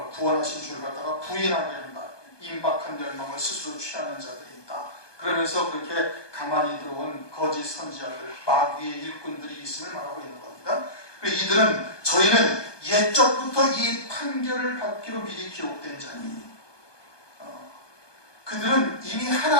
구원하신 주를 갖다가 부인하게 한다. 임박한 열망을 스스로 취하는 자들이 있다. 그러면서 그렇게 가만히 들어온 거짓 선지자들, 마귀의 일꾼들이 있음을 말하고 있는 겁니다. 이들은 저희는 옛적부터 이 판결을 받기로 미리 기록된 자니 그들은 이미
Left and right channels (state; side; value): late; right; 1.2 ms